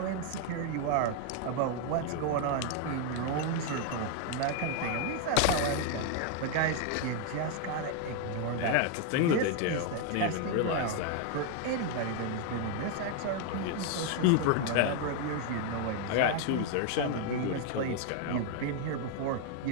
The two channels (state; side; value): different; both; correlation 0.01